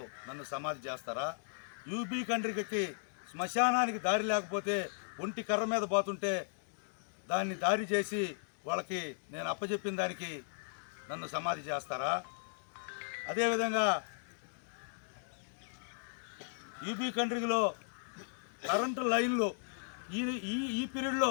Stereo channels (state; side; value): silent; right; digital silence